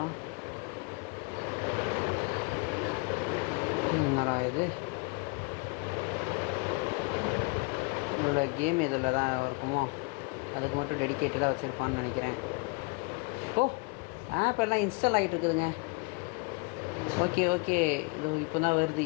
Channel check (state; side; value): quieter; right; 30.7 dB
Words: என்னடா இது? இதில் கேம் இதில் தான் இருக்குமோ? அதுக்கு மட்டும் டெடிக்கேட்டடாக வச்சுருப்பான்னு நினைக்கிறேன். ஓ, ஆப் எல்லாம் இன்ஸ்டால் ஆகிட்டு இருக்குதுங்க. ஓகே, இது இப்போ தான் வருது.